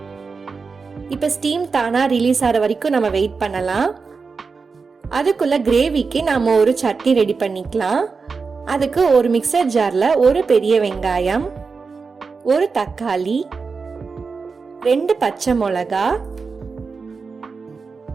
இப்ப ஸ்டீம் தானா ரிலீஸ் ஆகிற வரைக்கும் நம்ம வெயிட் பண்ணலாம். அதுக்குள்ள கிரேவிக்கு நாம ஒரு சட்னி ரெடி பண்ணிக்கலாம். அதுக்கு ஒரு மிக்சர் ஜார்ல ஒரு பெரிய வெங்காயம், ஒரு தக்காளி, 2 பச்சை மிளகா,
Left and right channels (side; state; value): left; quieter; 4.8 dB